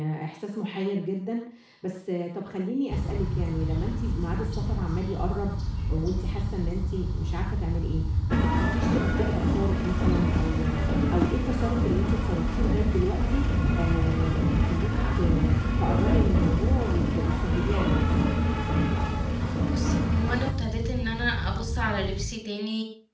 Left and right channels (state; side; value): identical; both; correlation 1.00